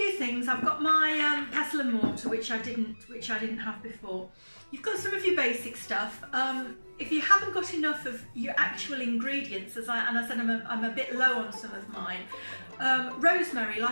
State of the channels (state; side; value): inverted; both; correlation -1.00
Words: things. I've got my pestle and mortar, which I didn't have before. You've got some of your basic stuff. If you haven't got enough of your actual ingredients, as I said, I'm a bit low on some of mine. Rosemary,